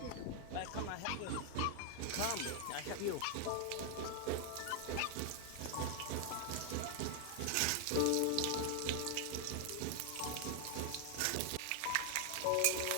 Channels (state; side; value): different; both; correlation 0.00